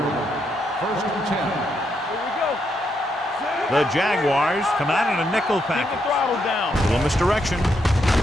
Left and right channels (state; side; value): normal; both; correlation 0.79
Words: line. First and 10. Here we go. The Jaguars come out in a nickel Keep the package. throttle down. Little misdirection.